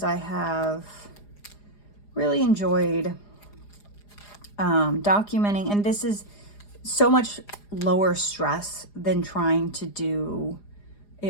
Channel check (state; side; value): late; right; 4.9 ms